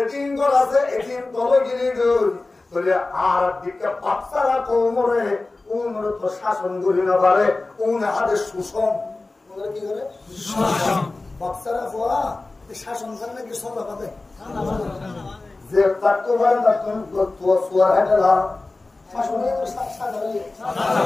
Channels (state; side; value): quieter; right; 3.3 dB